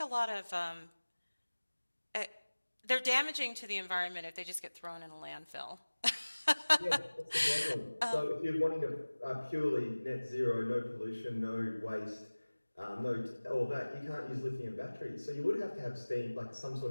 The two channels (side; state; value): both; inverted; correlation -1.00